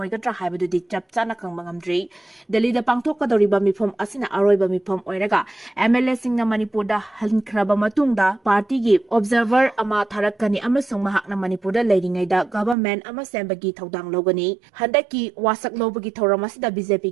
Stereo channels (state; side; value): drops out; left; at 12.8 s